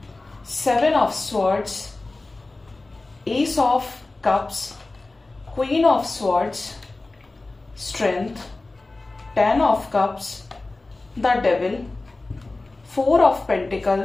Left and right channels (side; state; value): right; quieter; 3.2 dB